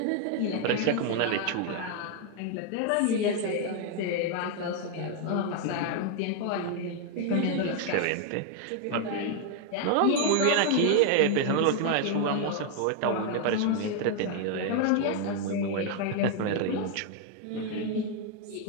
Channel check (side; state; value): both; different; correlation 0.01